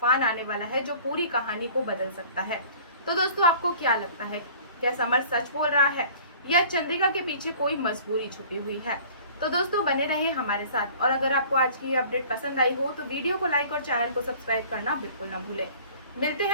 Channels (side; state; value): both; inverted; correlation -0.48